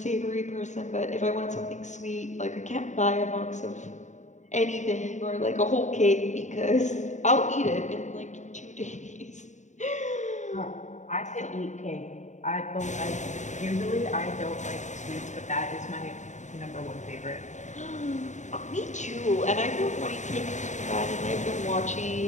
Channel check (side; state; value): right; late; 0.35 ms